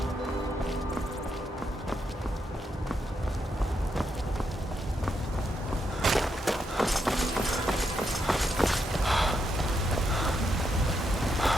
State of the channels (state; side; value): normal; both; correlation 0.81